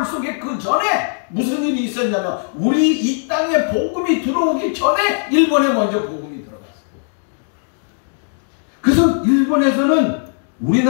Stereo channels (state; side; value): silent; right; 67 dB below the other